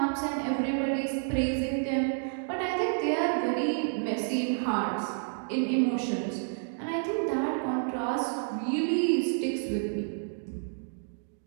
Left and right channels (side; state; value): left; silent; digital silence